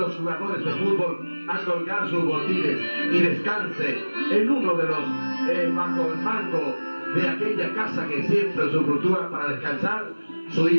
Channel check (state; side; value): inverted; both; correlation -1.00